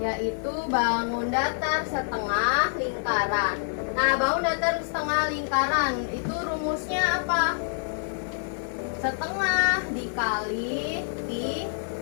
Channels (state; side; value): silent; right; digital silence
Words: bangun datar setengah lingkaran. Nah, bangun datar setengah lingkaran itu rumusnya apa? Setengah dikali pi